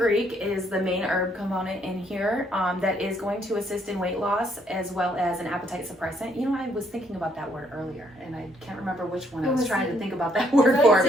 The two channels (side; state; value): both; normal; correlation 0.69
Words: is the main herb component in here that is going to assist in weight loss as well as an appetite suppressant. I was thinking about that word earlier, and I can't remember which one I was trying to think about that word for.